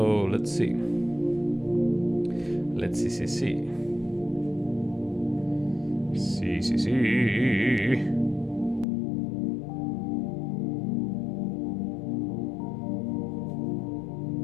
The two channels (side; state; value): right; drops out; at 8.8 s